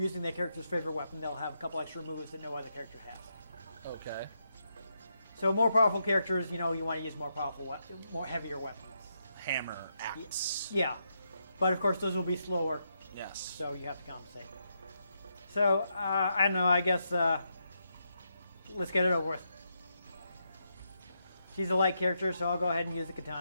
that character's favorite weapon, they'll have a couple extra moves that no other character has. Okay. So more powerful characters, you want to use more heavier weapons. Hammer, axe. Yeah, but of course those will be slower. Yes. So you have to compensate. So I don't know. I guess let's get it over with. She's a light character, so I'll go ahead and use the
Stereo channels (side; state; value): both; inverted; correlation -0.81